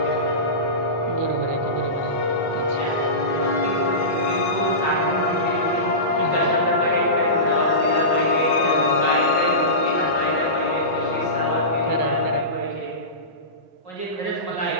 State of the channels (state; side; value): late; left; 5.3 ms